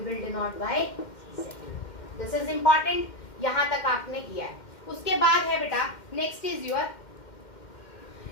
denote by Z. This is important. यहाँ तक आपने किया है। उसके बाद है बेटा नेक्स्ट इज योर,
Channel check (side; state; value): right; late; 2.1 ms